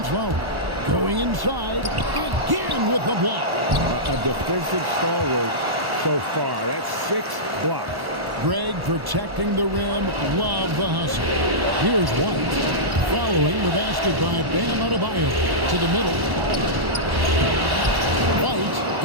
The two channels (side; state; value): left; late; 1.1 ms